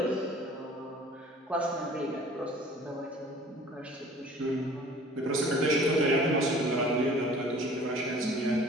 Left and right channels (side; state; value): both; normal; correlation 0.48